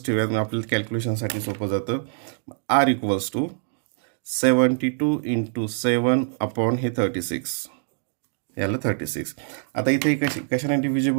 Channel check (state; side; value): silent; left; digital silence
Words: ठेवूयात, आपल्याला कॅल्क्युलेशनसाठी सोपं जातं. r equals to 72 into 7 upon हे 36 याला 36. आता इथे कशाने